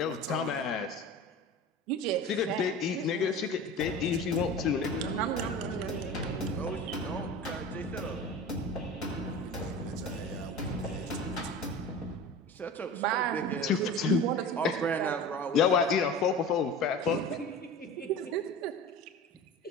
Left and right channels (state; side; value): normal; both; correlation 0.34